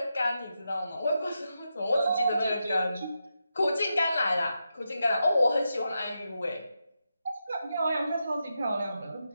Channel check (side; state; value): both; inverted; correlation -0.87